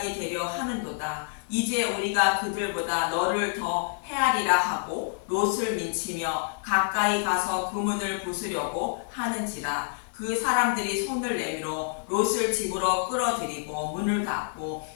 되려 하는도다. 이제 우리가 그들보다 너를 더 헤아리라 하고 롯을 민치며 가까이 가서 그 문을 부수려고 하는지라. 그 사람들이 손을 내밀어 롯을 집으로 끌어들이고 문을 닫고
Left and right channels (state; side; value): silent; right; digital silence